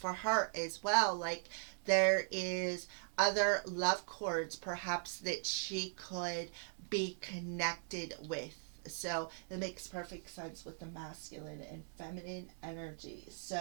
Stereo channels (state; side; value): silent; left; digital silence